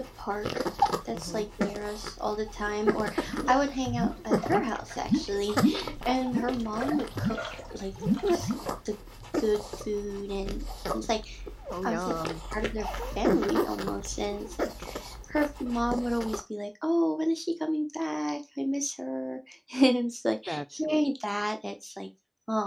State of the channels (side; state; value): both; identical; correlation 1.00